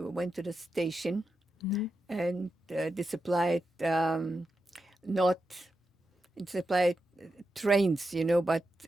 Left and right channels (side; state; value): both; normal; correlation 0.88